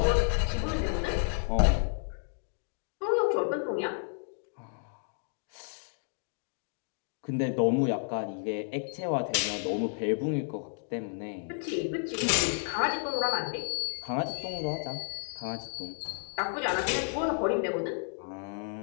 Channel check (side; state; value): right; silent; digital silence